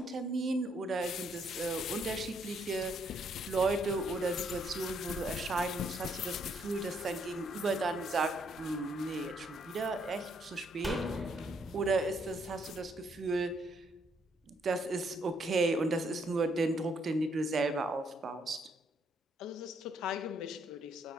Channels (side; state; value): both; normal; correlation 0.71